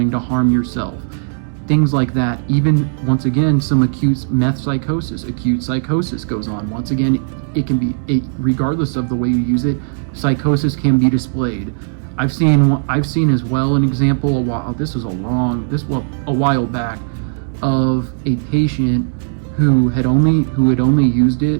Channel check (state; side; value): silent; left; digital silence